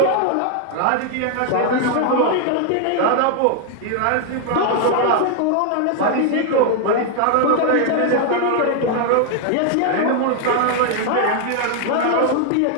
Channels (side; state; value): both; different; correlation 0.00